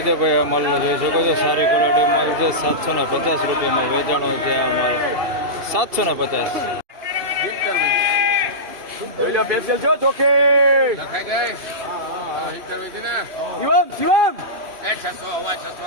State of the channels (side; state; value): left; late; 2.7 ms